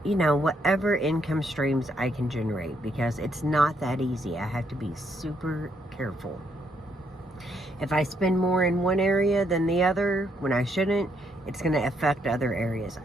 you know, whatever income streams I can generate, because it's not that easy. I have to be super careful. If I spend more in one area than the other when I shouldn't, it's going to affect other areas.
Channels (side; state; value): both; normal; correlation 0.74